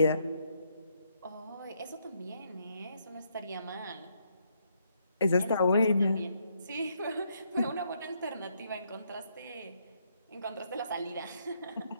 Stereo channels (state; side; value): inverted; both; correlation -0.75